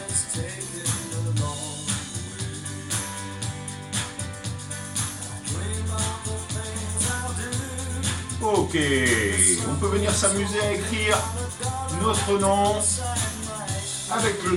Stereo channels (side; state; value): both; identical; correlation 1.00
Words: Ok, on peut venir s'amuser à écrire notre nom avec le